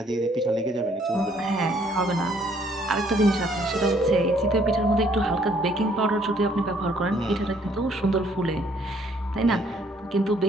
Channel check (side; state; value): both; normal; correlation 0.64